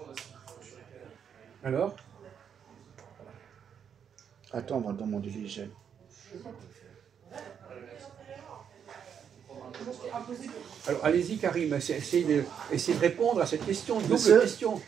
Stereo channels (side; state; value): left; quieter; 7.9 dB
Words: Alors? Attends, on va demander l'hygiène. Alors, allez-y, Karim, essayez de répondre à cette question, double Monsieur? question.